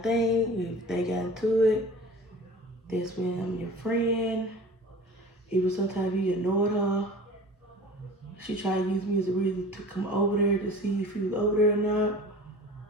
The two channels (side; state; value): both; normal; correlation 0.41